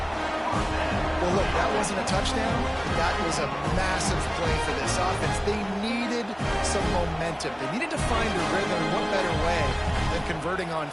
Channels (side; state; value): both; identical; correlation 1.00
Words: Well, look, that wasn't a touchdown. That was a massive play for this offense. They needed some momentum. They needed to find a rhythm. What better way than converting on